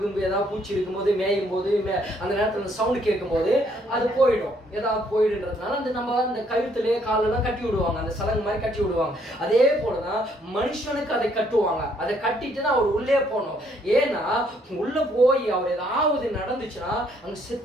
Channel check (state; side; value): normal; both; correlation 0.68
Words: கிம்பு ஏதாவது பூச்சி இருக்கும் போது மேயும் போது அந்த நேரத்துல அந்த சவுண்ட் கேட்கும் போது அது போயிடும், ஏதாவது போயிடுன்றதுனால அந்த நம்ம அந்த கழுத்துலயே காலெல்லாம் கட்டி விடுவாங்க, அந்த சலங்கு மாதிரி கட்டி விடுவாங்க. அதே போலதான் மனுஷனுக்கு அதை கட்டுவாங்க. அதை கட்டிட்டுதான் அவர் உள்ளே போகணும். ஏன்னா உள்ள போய் அவர் ஏதாவது நடந்துச்சுன்னா அங்க